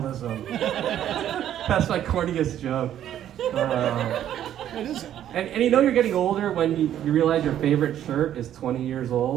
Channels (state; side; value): quieter; left; 11.0 dB